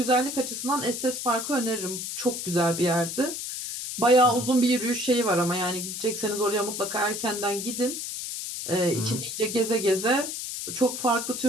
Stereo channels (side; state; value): left; noise; hiss, 6 dB below the sound